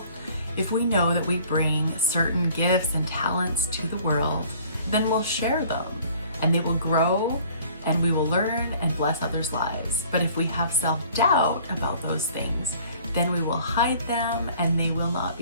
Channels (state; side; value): inverted; both; correlation -0.53